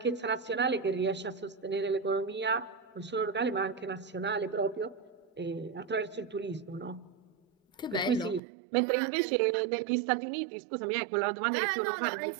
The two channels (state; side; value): drops out; left; at 8.4 s